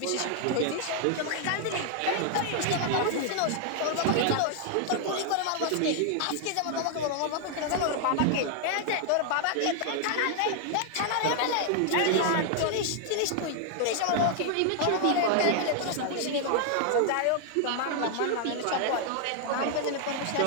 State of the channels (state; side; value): different; both; correlation 0.00